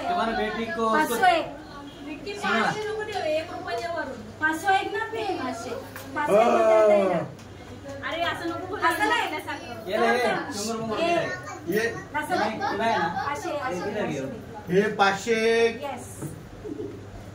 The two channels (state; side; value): identical; both; correlation 1.00